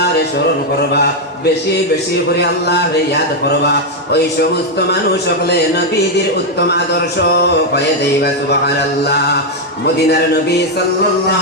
স্মরণ করবা, বেশি বেশি করে আল্লাহর ইয়াদ করবা, ওই সমস্ত মানুষ সকলে নবীদের উত্তম আদর্শ পাইয়া যাইবা। সুবহানাল্লাহ। মদিনার নবী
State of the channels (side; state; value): both; normal; correlation 0.01